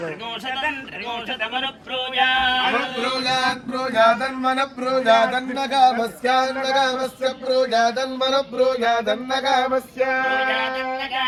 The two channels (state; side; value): identical; both; correlation 1.00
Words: त्रिगोशतमनु प्रोजात् प्रोजात् प्रोजादन्मन प्रोजादन्नगामस्यान्नगामस्य प्रोजादन्मन प्रोजादन्नगामस्य